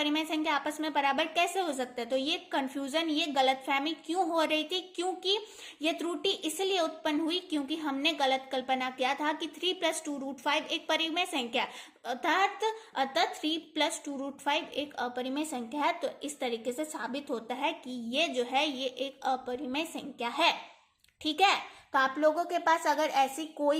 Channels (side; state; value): both; identical; correlation 1.00